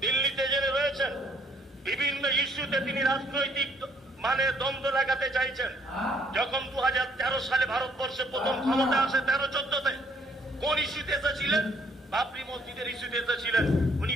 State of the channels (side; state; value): both; normal; correlation 0.65